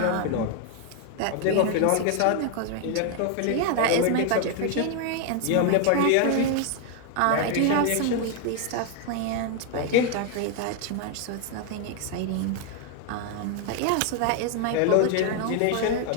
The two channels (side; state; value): both; different; correlation 0.00